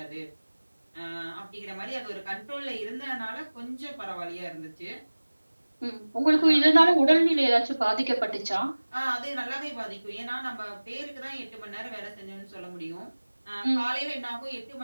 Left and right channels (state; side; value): inverted; both; correlation -1.00